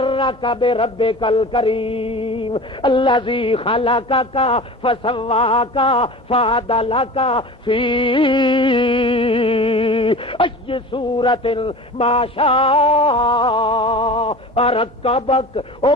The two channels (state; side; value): normal; both; correlation 0.36